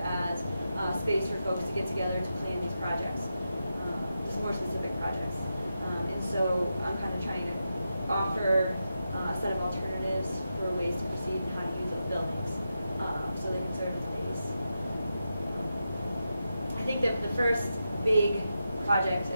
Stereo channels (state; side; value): inverted; both; correlation -0.88